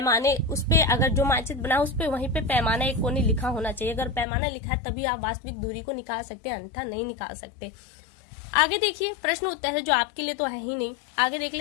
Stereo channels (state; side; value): drops out; right; at 4.2 s